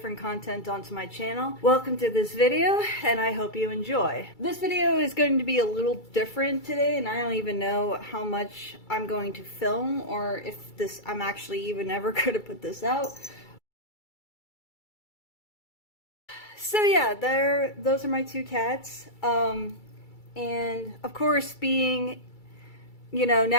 content onto my channel. Welcome to this video, and I hope you enjoy. This video is going to be a little different today, and I don't even know how much I'm going to film, or if I'm actually even ever going to put this out. So yeah, those are my two cats. And of course, being,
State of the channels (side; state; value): right; late; 2.3 ms